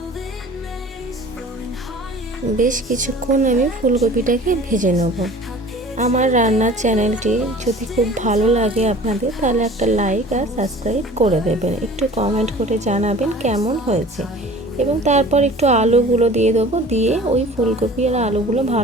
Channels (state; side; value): normal; both; correlation 0.45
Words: বেশ কিছুক্ষণ আমি ফুলকপিটাকে ভেজে নেব। আমার রান্নার চ্যানেলটি যদি খুব ভালো লাগে আপনাদের, তাহলে একটা লাইক আর সাবস্ক্রাইব করে দেবেন, একটু কমেন্ট করে জানাবেন কেমন হয়েছে। এবং তারপর একটু আলুগুলো দিয়ে দেবো, দিয়ে ওই ফুলকপি আর আলুগুলো